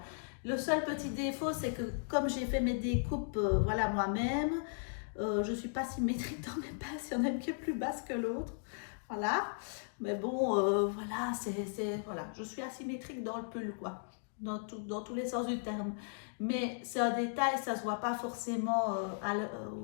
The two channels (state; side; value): silent; right; digital silence